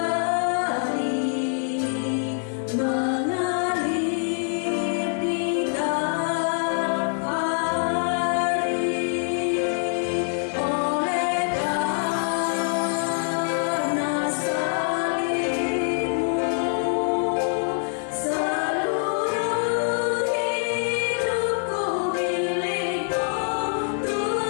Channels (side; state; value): right; silent; 62 dB below the other